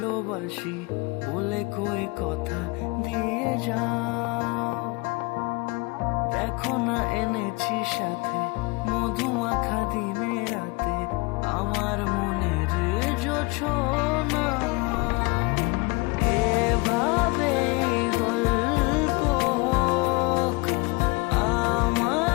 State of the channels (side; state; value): right; quieter; 27.0 dB